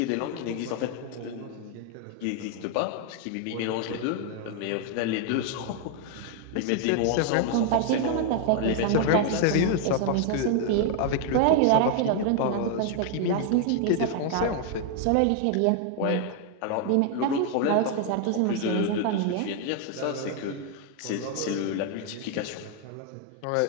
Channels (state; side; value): different; both; correlation 0.00